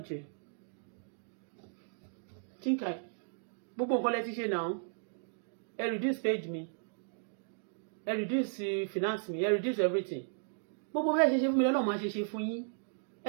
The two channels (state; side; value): silent; left; digital silence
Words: Think I gbogbo nǹkan lẹ ti ṣe náà. Ẹ reduce page mi, ẹ reduce finance mi, ẹ reduce everything. Gbogbo bẹ́ẹ̀ ṣe fún mi lọ́nà máa ṣe fún yín.